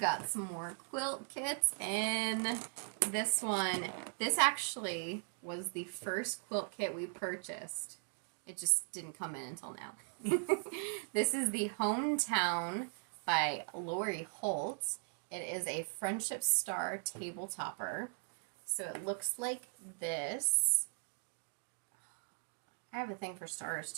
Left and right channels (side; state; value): left; silent; 52 dB below the other